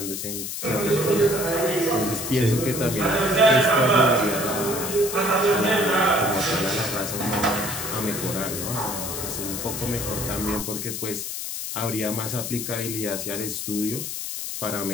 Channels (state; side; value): noise; left; hiss, 5 dB below the sound